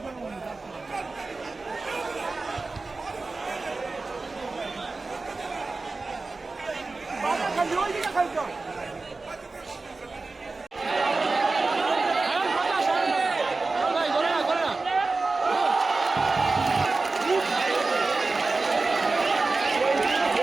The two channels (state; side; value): quieter; left; 3.7 dB